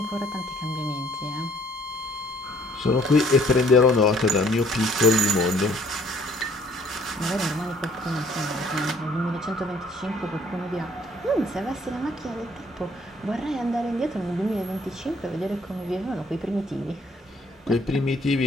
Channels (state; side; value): normal; both; correlation 0.61